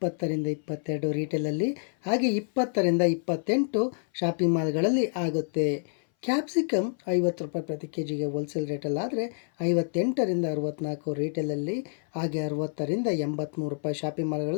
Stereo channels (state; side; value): silent; right; 58 dB below the other